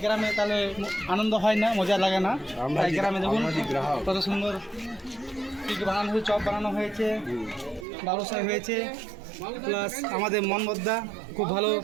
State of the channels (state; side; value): drops out; left; at 7.9 s